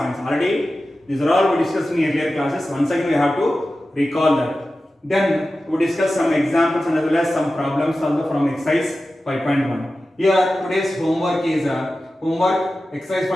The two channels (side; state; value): both; normal; correlation 0.94